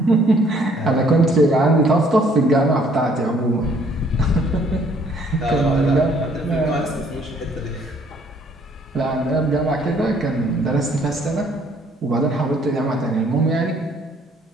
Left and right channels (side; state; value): both; normal; correlation 0.62